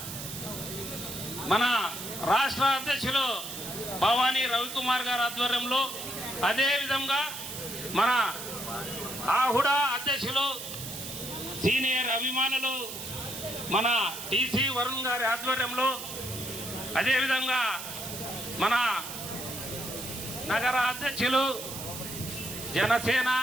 మన రాష్ట్ర అధ్యక్షులు భవానీ రవికుమార్ గారి ఆధ్వర్యంలో, అదే విధంగా మన ఆహుడా అధ్యక్షులు సీనియర్ అభిమానులు మన టీసీ వరుణ్ గారి ఆధ్వర్యంలో, అదేవిధంగా మన నగర అధ్యక్షులు జనసేన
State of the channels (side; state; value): right; noise; hiss, 8 dB below the sound